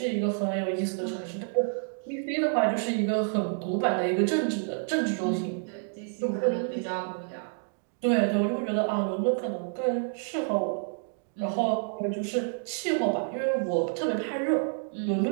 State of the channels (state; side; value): silent; left; digital silence